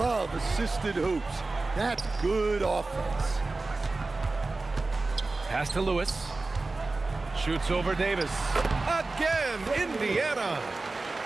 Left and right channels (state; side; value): quieter; left; 3.4 dB